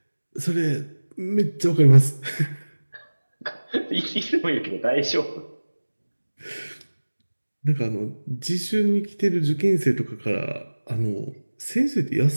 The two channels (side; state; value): both; inverted; correlation -1.00